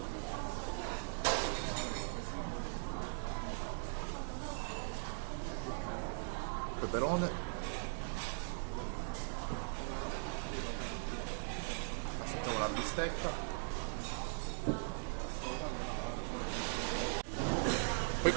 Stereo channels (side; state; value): left; silent; digital silence